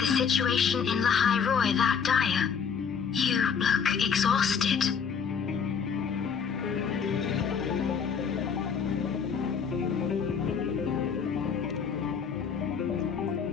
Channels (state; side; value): quieter; right; 6.6 dB